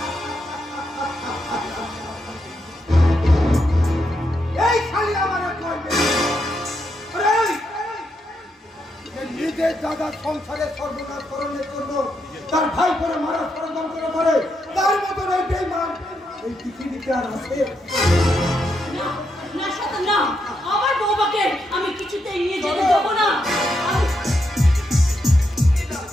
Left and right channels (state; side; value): normal; both; correlation 0.81